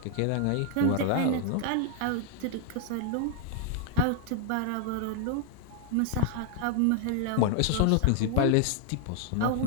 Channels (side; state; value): both; different; correlation 0.00